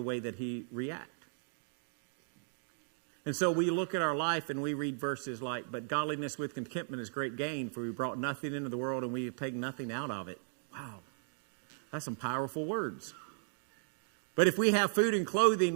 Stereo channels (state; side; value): silent; left; digital silence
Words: way that he reacted. And so we look at our life and we read verses like, but godliness with contentment is great gain, for we brought nothing into the world and we have taken nothing out of it. Wow. That's some powerful words. But if we have food and